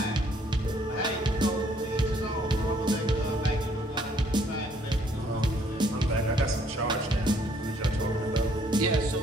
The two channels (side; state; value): both; normal; correlation 0.65